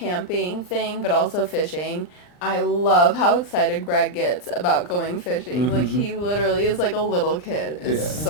thing, but also fishing. I love how excited Greg gets about going fishing. Mm-hmm. Like, he literally is like a little kid. It's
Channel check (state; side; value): late; right; 39 ms